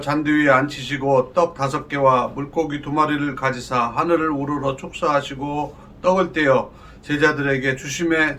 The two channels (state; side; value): identical; both; correlation 1.00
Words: 잔디 위에 앉히시고 떡 5개와 물고기 2마리를 가지사 하늘을 우러러 축사하시고 떡을 떼어 제자들에게 주심에